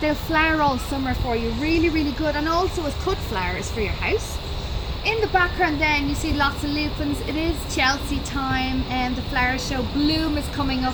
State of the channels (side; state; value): both; identical; correlation 1.00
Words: flower all summer for you. Really good, and also as cut flowers for your house. In the background then you see lots of lupins. It is Chelsea time and the flower show Bloom is coming up.